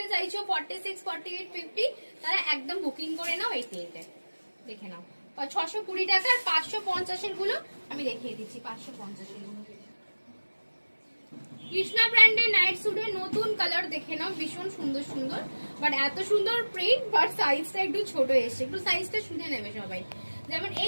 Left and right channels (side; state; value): both; inverted; correlation -1.00